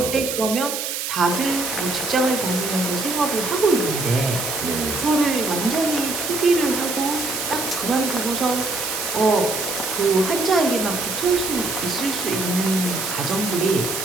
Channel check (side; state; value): right; noise; hiss, 4 dB below the sound